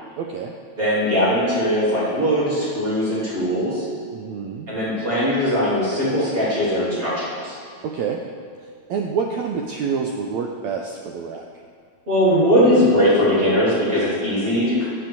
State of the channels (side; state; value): left; late; 9.0 ms